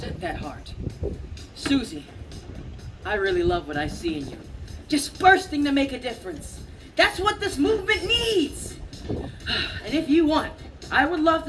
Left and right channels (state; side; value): identical; both; correlation 1.00